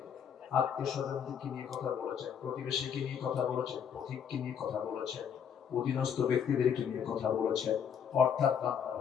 আত্মীয়-স্বজনকে নিয়ে কথা বলেছেন, প্রতিবেশীকে নিয়ে কথা বলেছেন, পথিককে নিয়ে কথা বলেছেন, অধীনস্থ ব্যক্তিদেরকে নিয়ে কথা বলেছেন। অর্থাৎ বান্দার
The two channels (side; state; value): right; quieter; 7.8 dB